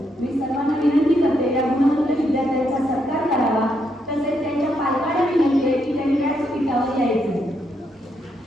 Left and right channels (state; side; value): normal; both; correlation 0.78